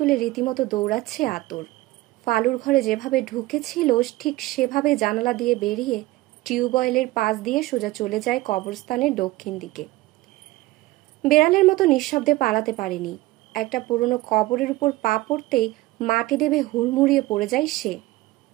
রীতিমতো দৌড়াচ্ছে আতর। ফালুর ঘরে যেভাবে ঢুকেছিল ঠিক সেভাবে জানালা দিয়ে বেরিয়ে টিউবওয়েলের পাশ দিয়ে সোজা চলে যায় কবরস্থানের দক্ষিণ দিকে। বেড়ালের মতো নিঃশব্দে পালাতে পারেনি। একটা পুরনো কবরের উপর পা পড়তেই মাটি দেবে হুড়মুড়িয়ে পড়ে যায় সে।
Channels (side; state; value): left; quieter; 18.7 dB